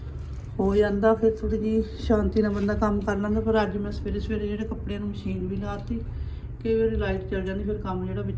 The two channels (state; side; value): identical; both; correlation 1.00